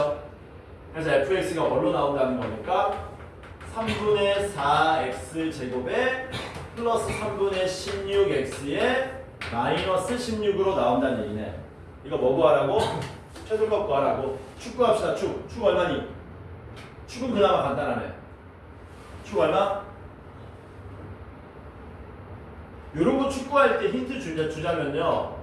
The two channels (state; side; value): identical; both; correlation 1.00